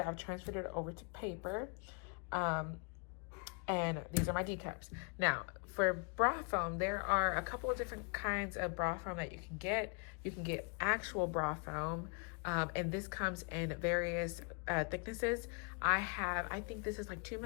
transferred it over to paper. And these are my D cups. Now, for bra foam, there are a couple of different kinds of bra foam that you can get. You can get actual bra foam, and this comes in various thicknesses. I think this is like 2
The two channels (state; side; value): quieter; right; 37.0 dB